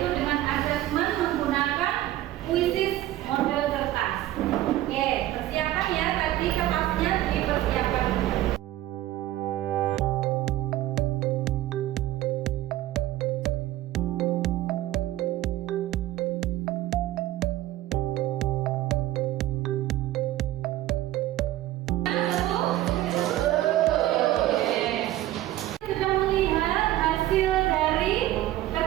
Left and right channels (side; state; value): left; quieter; 14.8 dB